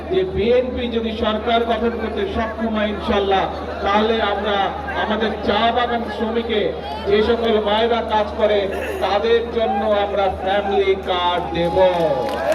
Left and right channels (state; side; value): identical; both; correlation 1.00